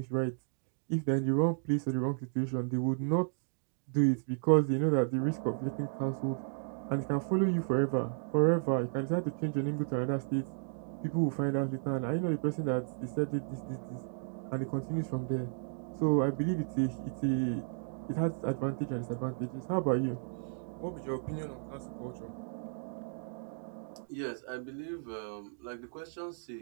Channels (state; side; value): silent; left; digital silence